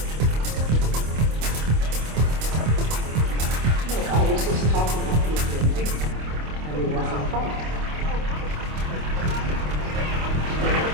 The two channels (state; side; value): late; left; 26 ms